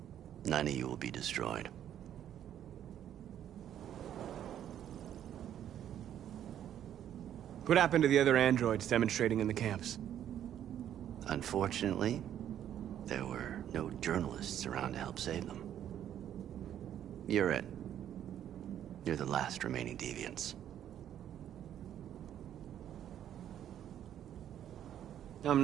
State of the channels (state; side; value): quieter; left; 10.5 dB